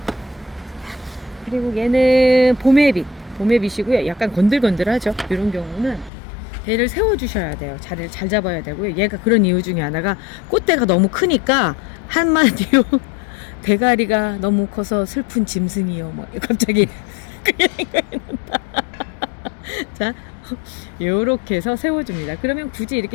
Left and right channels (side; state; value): right; drops out; at 6.1 s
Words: 그리고 얘는 봄에빗이고요. 약간 건들건들하죠. 이런 경우는 얘를 세워주셔야 돼요. 자리를 잘 잡아야 되고요. 얘가 그런 이유 중에 하나가 꽃대가 너무 크니까 한마디로 대가리가 너무 커서 슬픈 짐승이요. 갑자기 그게 생각이 난다. 자, 요렇게 해서 세워줍니다. 그러면 굳이 이렇게